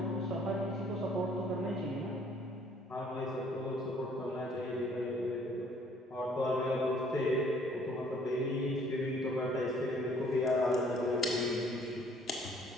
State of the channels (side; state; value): both; normal; correlation 0.60